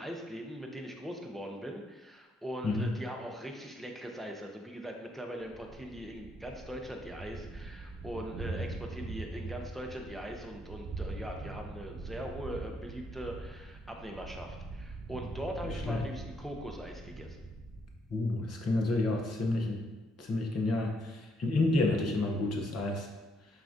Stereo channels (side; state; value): both; normal; correlation 0.74